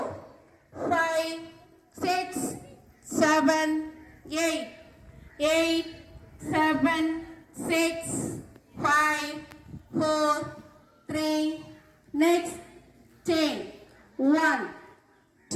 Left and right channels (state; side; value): identical; both; correlation 1.00